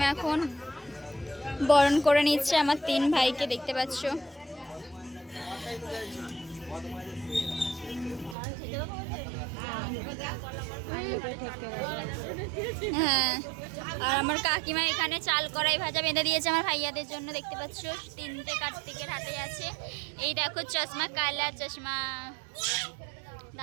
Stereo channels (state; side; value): drops out; left; at 8.3 s